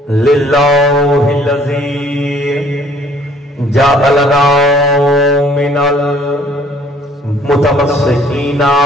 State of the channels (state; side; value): normal; both; correlation 0.58